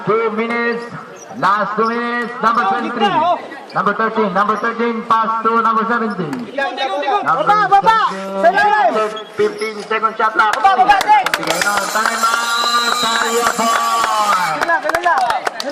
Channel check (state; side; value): identical; both; correlation 1.00